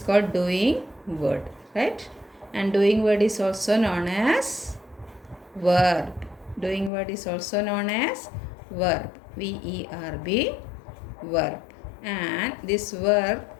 doing word, right? And doing word is also known as verb. Doing word is also known as verb. VERB, verb. And this verb,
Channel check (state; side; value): drops out; right; at 6.9 s